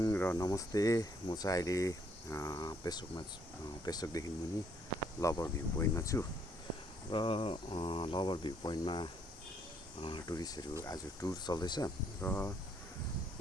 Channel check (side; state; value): both; normal; correlation 0.68